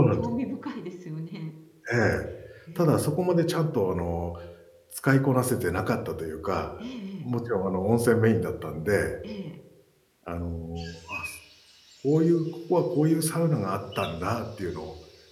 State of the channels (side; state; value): both; identical; correlation 1.00